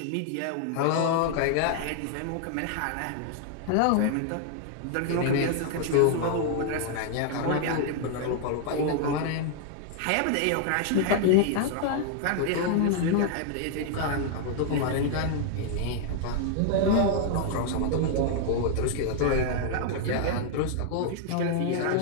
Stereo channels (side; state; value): both; different; correlation 0.00